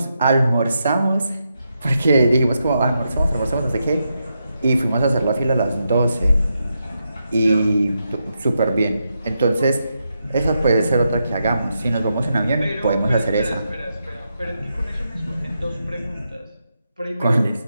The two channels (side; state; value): both; inverted; correlation -0.85